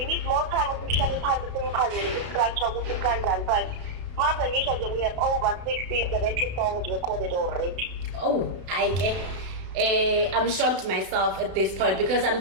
need more time to share time to think about it, with the but Mother usually we have over 60, 70 songs recorded already. Oh, I get. I'm shocked myself at this point because I'm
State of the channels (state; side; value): late; left; 32 ms